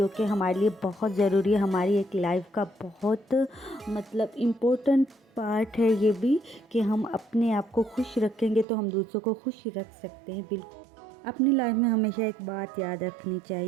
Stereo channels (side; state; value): left; drops out; at 8.7 s